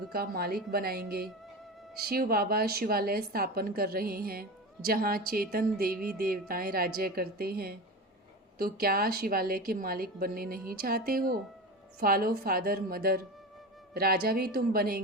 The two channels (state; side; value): normal; both; correlation 0.26